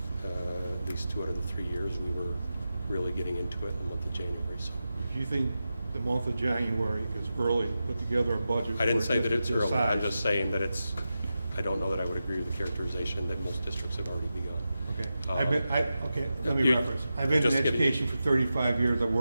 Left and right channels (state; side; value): inverted; both; correlation -0.91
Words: at least 2 out of the 3 years, we were really getting into it in the month of January. So If you think the month of January is early to put together a budget. I didn't for a say that it's district this early. I'm size. just saying that I don't know that I would agree with the characterization that most districts have already begun. Okay. Uh, Let me you- reference. I've been in just kidding. education for 35 years. I've